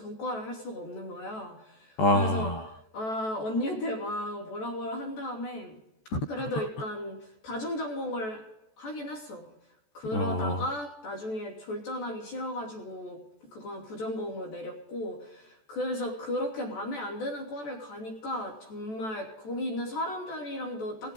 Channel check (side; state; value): right; late; 14 ms